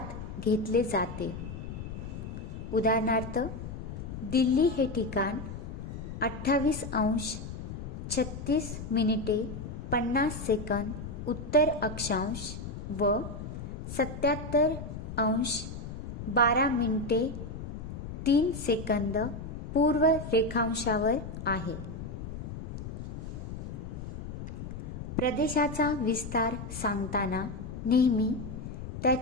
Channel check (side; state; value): left; noise; rumble, 8 dB below the sound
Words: घेतले जाते. उदाहरणार्थ, दिल्ली हे ठिकाण 28°36' उत्तर अक्षांश व 77°12' पूर्व रेखांशावर आहे. प्रदेशाचा विस्तार सांगताना नेहमी